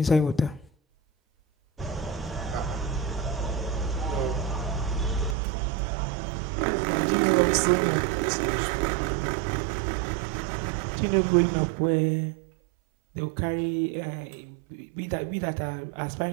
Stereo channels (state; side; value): drops out; left; at 5.4 s